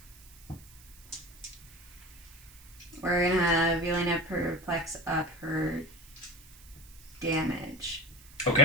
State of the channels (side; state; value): right; noise; hiss, 22 dB below the sound